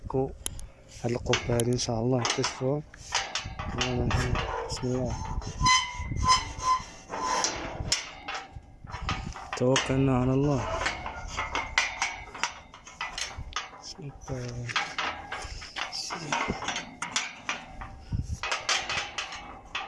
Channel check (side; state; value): both; identical; correlation 1.00